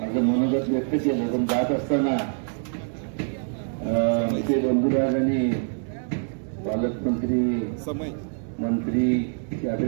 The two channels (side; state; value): left; silent; 59 dB below the other